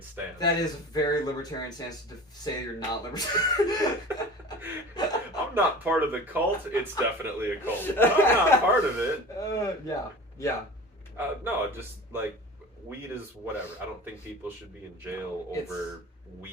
stance. That is a very libertarian stance to say you're not libertarian. I'm not part of the cult. It's definitely a cult. I'm not part of it. Yeah. No, just like weed is whatever. I don't think people should be in jail over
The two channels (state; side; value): normal; both; correlation 0.37